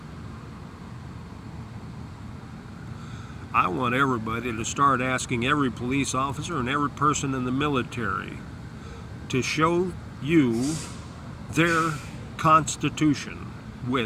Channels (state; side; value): identical; both; correlation 1.00